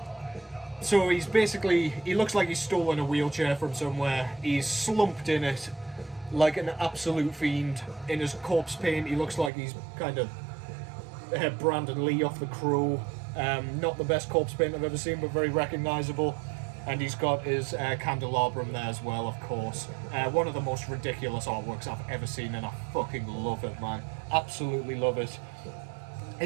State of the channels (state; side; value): drops out; left; at 9.5 s